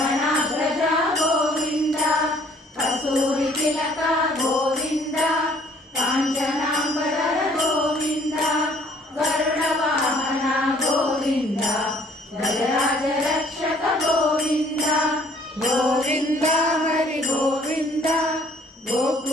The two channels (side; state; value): both; normal; correlation 0.59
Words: గోవింద కస్తూరి తిలక గోవింద కాంచనాంబర గోవింద గరుడ వాహన గోవింద గజరాజ రక్షక గోవింద గోవింద హరి గోవింద